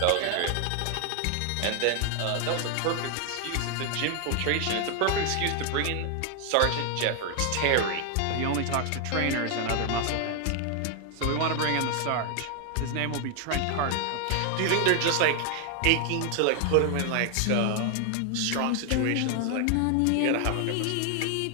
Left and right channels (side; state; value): both; different; correlation 0.00